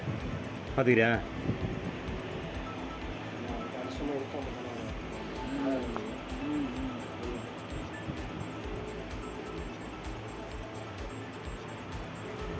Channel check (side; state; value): both; identical; correlation 1.00